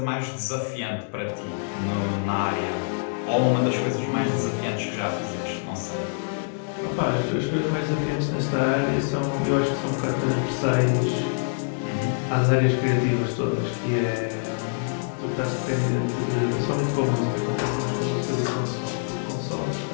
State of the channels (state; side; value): silent; right; digital silence